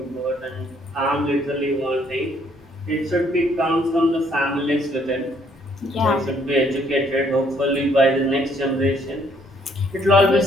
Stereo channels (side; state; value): both; normal; correlation 0.66